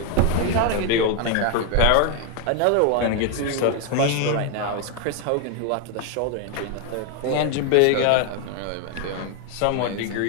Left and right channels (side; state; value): both; different; correlation 0.01